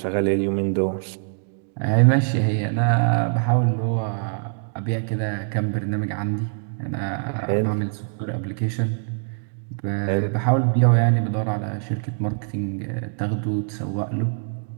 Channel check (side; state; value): left; silent; digital silence